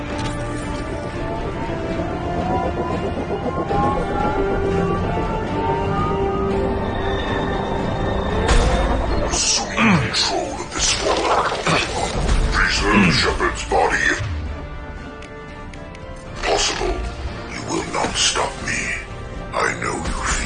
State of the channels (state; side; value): identical; both; correlation 1.00